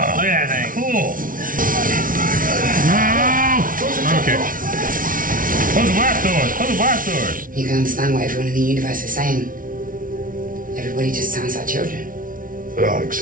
Look at that thing. cool. No! Okay. Close the blast doors. Close the blast doors. You can understand what everyone in the universe is saying. Everybody just sounds like children. There are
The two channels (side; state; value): left; late; 0.39 ms